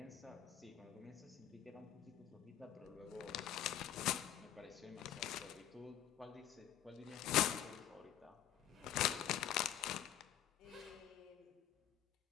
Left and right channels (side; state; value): right; quieter; 10.9 dB